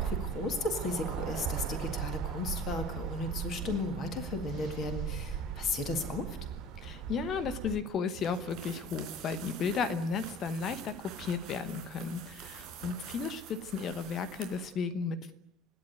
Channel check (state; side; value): normal; both; correlation 0.45